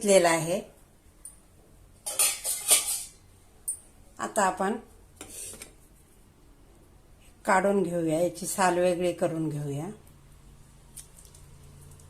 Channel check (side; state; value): both; identical; correlation 1.00